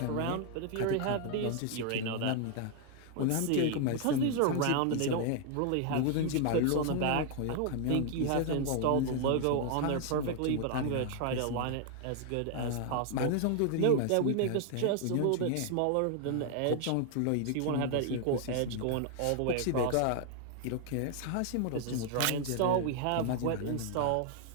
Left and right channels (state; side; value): different; both; correlation 0.00